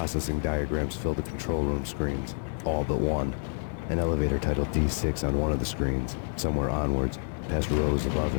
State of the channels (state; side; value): silent; right; 59 dB below the other